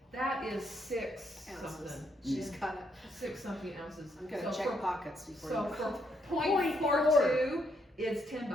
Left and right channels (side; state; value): both; normal; correlation 0.75